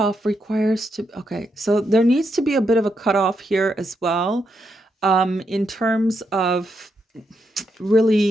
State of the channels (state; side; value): normal; both; correlation 0.81